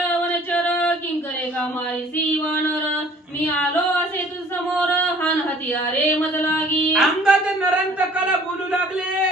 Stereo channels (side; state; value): both; normal; correlation 0.53